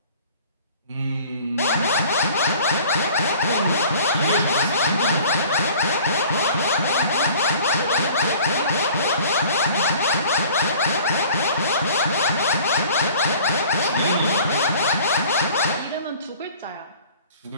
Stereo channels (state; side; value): inverted; both; correlation -0.48